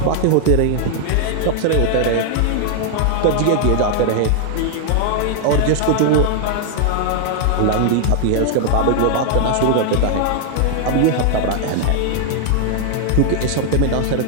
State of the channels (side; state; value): both; different; correlation 0.00